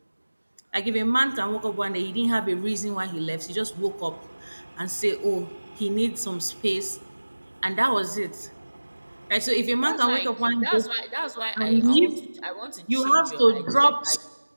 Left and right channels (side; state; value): both; inverted; correlation -1.00